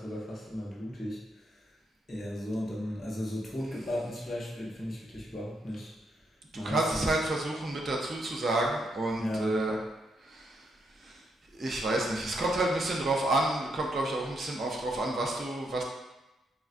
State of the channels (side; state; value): both; normal; correlation 0.78